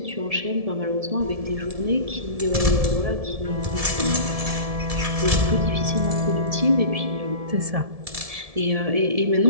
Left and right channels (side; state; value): left; late; 1.7 ms